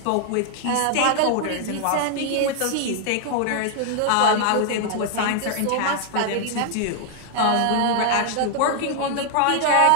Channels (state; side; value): different; both; correlation 0.00